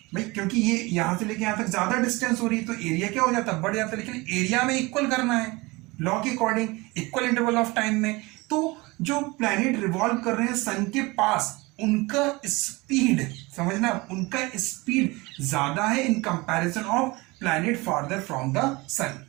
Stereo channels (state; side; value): quieter; left; 23.6 dB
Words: भाई, क्योंकि ये यहाँ से लेके यहाँ तक ज्यादा डिस्टेंस हो रही है तो एरिया क्या हो जाता, बढ़ जाता। लेकिन एरिया में इक्वल करना है लॉ के according, equal interval of time में। तो जो प्लैनेट रिवॉल्व कर रहे हैं सन के पास, उनका स्पीड समझना, उनका स्पीड ज्यादा है in comparison of planet farther from the sun.